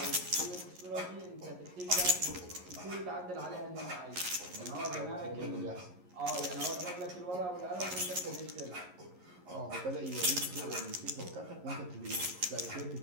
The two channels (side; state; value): left; late; 11 ms